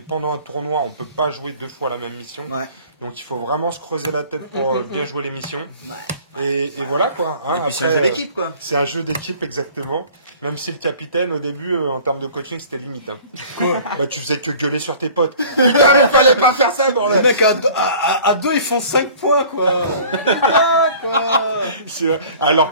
un tournoi, on peut pas jouer 2 fois la même mission. Ouais. Donc il faut vraiment se creuser la tête pour bien jouer les missions. Et voilà quoi. Hein, Et puis c'est un après, jeu d'équipe, quoi. c'est un jeu d'équipe exactement. Même si le capitaine au début en termes de coaching c'était limite. Hein. Bah tu faisais que gueuler sur tes potes. Putain mais fallait pas faire ça Les bordel. mecs à 2 ils font 5 points quoi. C'est vrai. Alors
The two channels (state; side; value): inverted; both; correlation -0.48